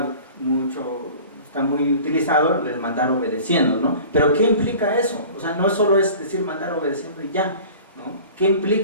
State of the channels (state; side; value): inverted; both; correlation -0.42